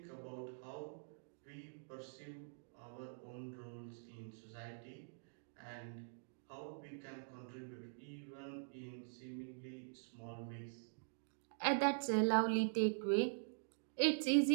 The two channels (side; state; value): left; silent; digital silence